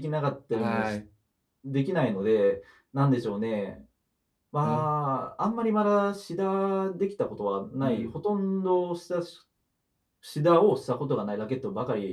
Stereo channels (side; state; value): both; identical; correlation 1.00